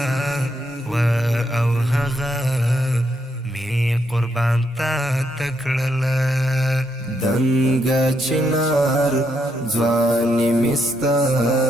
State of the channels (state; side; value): normal; both; correlation 0.78